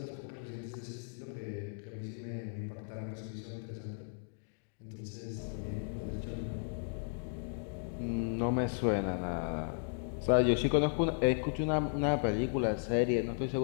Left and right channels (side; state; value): right; silent; digital silence